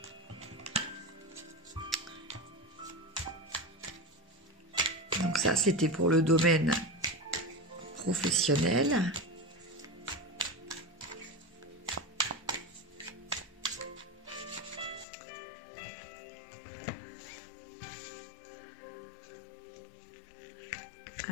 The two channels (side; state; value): right; drops out; at 15.1 s